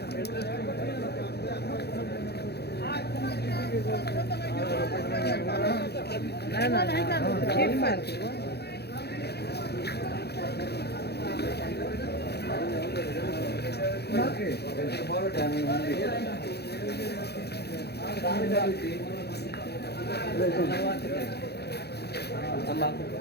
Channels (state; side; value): late; right; 0.48 ms